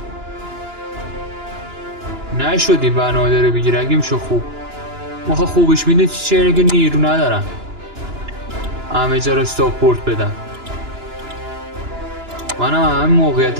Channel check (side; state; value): left; late; 2.9 ms